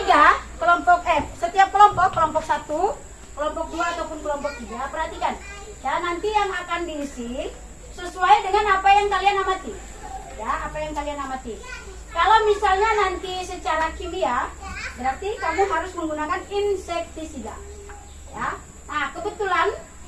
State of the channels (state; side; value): identical; both; correlation 1.00